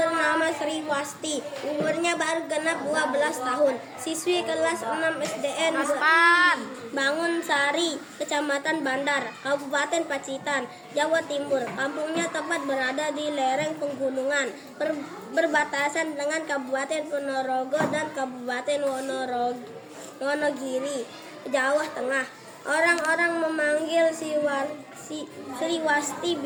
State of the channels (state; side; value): identical; both; correlation 1.00